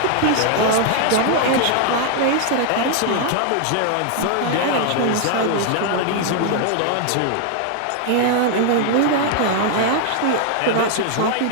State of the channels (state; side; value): different; both; correlation 0.00